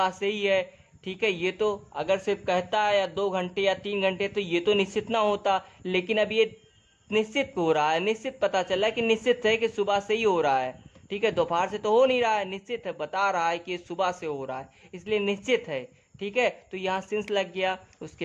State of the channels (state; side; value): identical; both; correlation 1.00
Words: से ही है। ठीक है, ये तो अगर सिर्फ कहता है या 2 घंटे या 3 घंटे तो ये तो निश्चित ना होता, लेकिन अब ये निश्चित हो रहा है, निश्चित पता चला कि निश्चित है कि सुबह से ही हो रहा है। ठीक है, दोपहर से तो हो नहीं रहा है, निश्चित है, बता रहा है कि सुबह से हो रहा है, इसलिए निश्चित है। ठीक है, तो यहाँ सिंस लग गया।